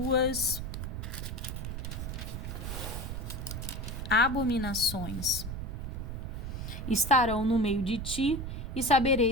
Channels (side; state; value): right; noise; rumble, 5 dB below the sound